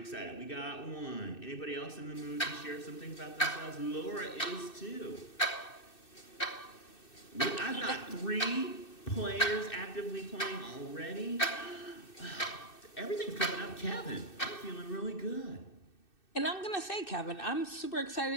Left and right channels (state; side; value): late; right; 2.6 ms